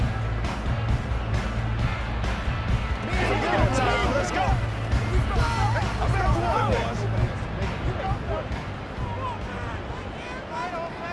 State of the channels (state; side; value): identical; both; correlation 1.00